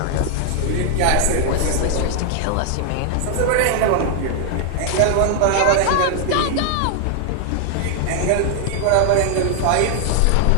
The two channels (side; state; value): both; different; correlation 0.00